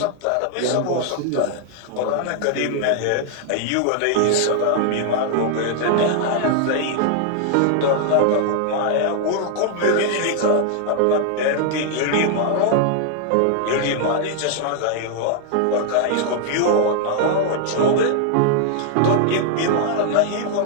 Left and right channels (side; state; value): both; different; correlation 0.00